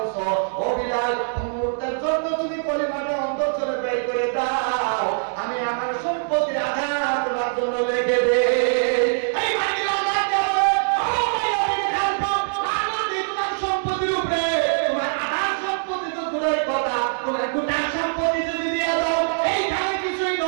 ও বিলাল, মুহূর্তের জন্য তুমি কলিমাটা অন্তর থেকে বের করে দাও, আমি আমার সম্পত্তির আধা তোমার জন্য লিখে দেই। এই বিলাল রাখতে হবে, ও ভাই, আমি খালফা আমি তোমার সম্পত্তির উপরে তোমার আধা সম্পত্তি তো দূরের কথা, তোমার গোটা সম্পত্তি যদি দিয়ে দাও, এইখানে কিছুই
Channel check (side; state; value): left; silent; 63 dB below the other